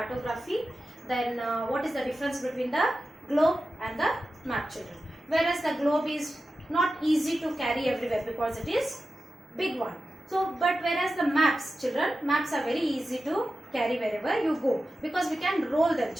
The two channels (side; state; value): both; normal; correlation 0.93